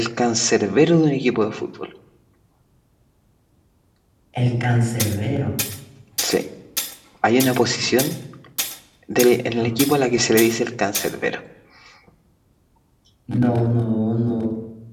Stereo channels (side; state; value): both; identical; correlation 1.00